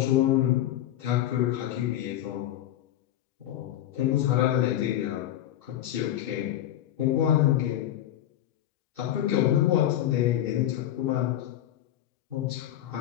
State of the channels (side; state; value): right; quieter; 12.5 dB